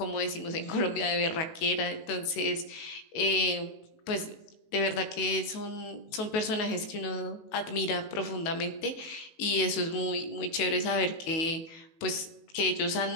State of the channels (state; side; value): late; right; 18 ms